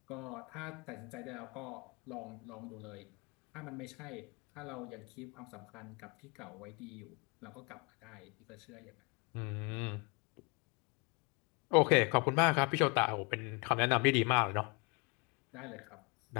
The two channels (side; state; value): right; quieter; 30.3 dB